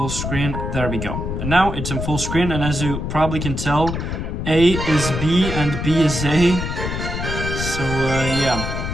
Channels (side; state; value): left; noise; rumble, 4 dB below the sound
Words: screen. There we go. And now it's in full screen, and as you probably can tell, A is B and B is A. So yeah,